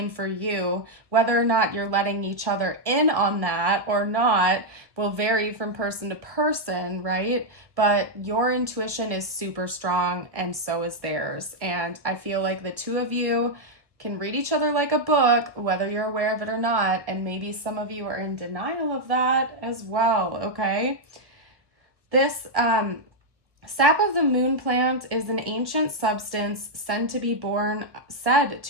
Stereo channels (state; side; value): late; left; 1.1 ms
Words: for you. Whether or not you're letting each other in on that or not will vary from person to person, right? But your intuition is super strong and so is theirs. And I feel like the two of you can read each other like a book, whether you're aware of it or not. And maybe some of you are in denial of that as well, okay? This sap of the moon plant is an ancient substance said to be born